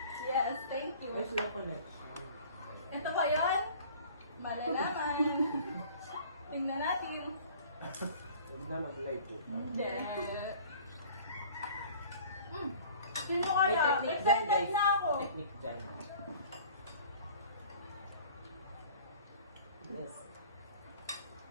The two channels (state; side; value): inverted; both; correlation -0.48